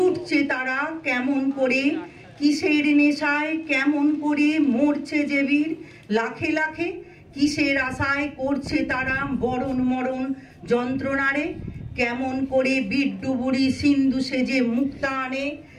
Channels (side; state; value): both; identical; correlation 1.00